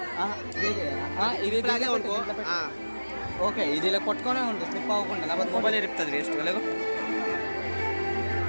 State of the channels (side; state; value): both; inverted; correlation -1.00